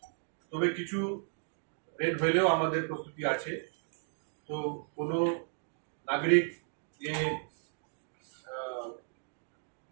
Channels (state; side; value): silent; left; digital silence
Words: তবে কিছু রেন হলেও আমাদের প্রস্তুতি আছে। তো কোনো নাগরিক এ